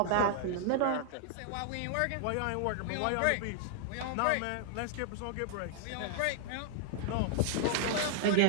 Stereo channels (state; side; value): different; both; correlation 0.00